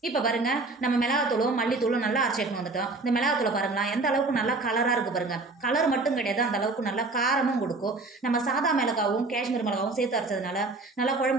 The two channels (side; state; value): left; quieter; 3.4 dB